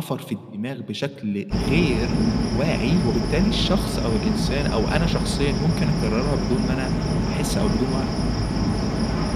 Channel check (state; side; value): identical; both; correlation 1.00